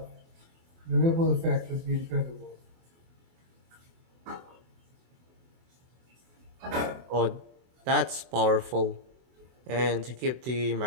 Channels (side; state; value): left; late; 24 ms